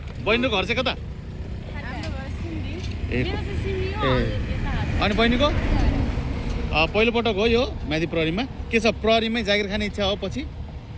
चाहिँ कता ए अनि बहिनीको पहिलो पटक हो यो म्यादी प्रहरीमा के छ प्रहरीमै जागिर खाने इच्छा हो पछि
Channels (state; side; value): identical; both; correlation 1.00